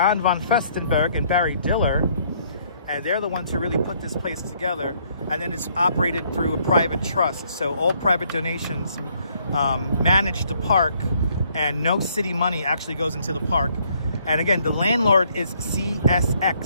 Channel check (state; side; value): inverted; both; correlation -0.67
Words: von Festenberg and Barry Diller. And they're the ones who really put this place together. And then it's operated through a private trust. So all private donations manage the park, and no city money actually goes into the park. And again, the landlord is